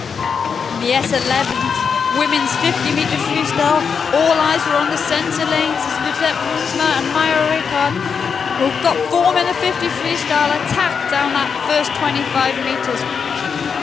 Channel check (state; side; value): quieter; right; 6.2 dB